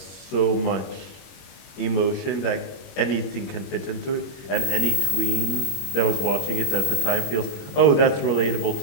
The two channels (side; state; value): right; late; 21 ms